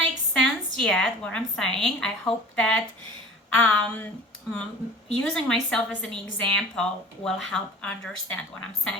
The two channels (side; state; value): both; normal; correlation 0.43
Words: sense yet, what I'm saying, I hope that using myself as an example will help understand what I'm